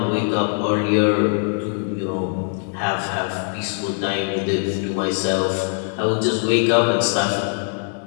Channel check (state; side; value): silent; right; 57 dB below the other